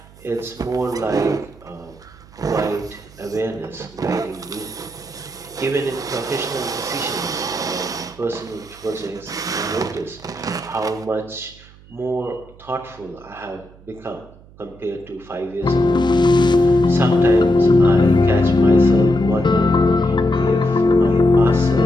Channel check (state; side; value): noise; right; hum, 24 dB below the sound